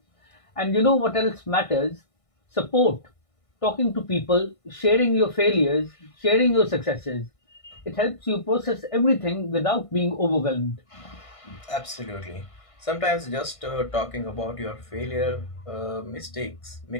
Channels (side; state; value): right; late; 1.5 ms